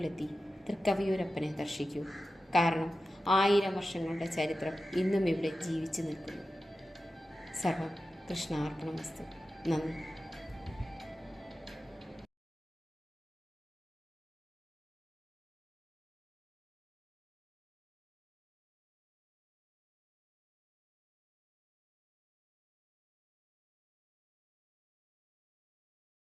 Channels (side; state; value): both; normal; correlation 0.93